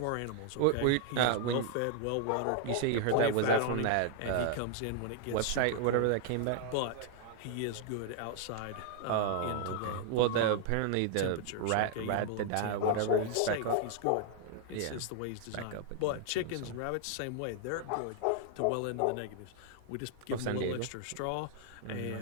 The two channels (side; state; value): both; different; correlation 0.00